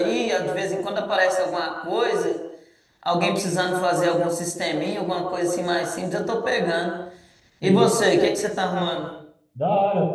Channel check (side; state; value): both; identical; correlation 1.00